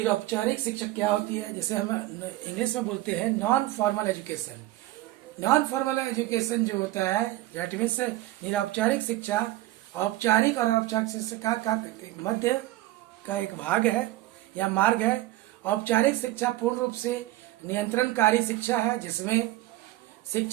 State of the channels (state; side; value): quieter; left; 16.7 dB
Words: शिक्षा क्या होती है, जिसे हम इंग्लिश में बोलते हैं non formal education. Non formal education जो होता है दैट मीन्स निरौपचारिक शिक्षा औपचारिक और अनौपचारिक शिक्षा का मध्य का एक भाग है या मार्ग है। औपचारिक शिक्षा पूर्ण रूप से नियंत्रणकारी शिक्षा है, जिसमें